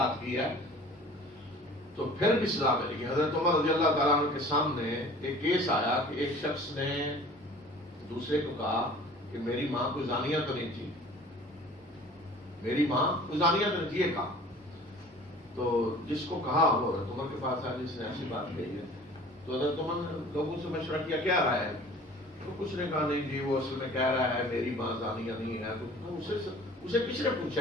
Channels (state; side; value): normal; both; correlation 0.46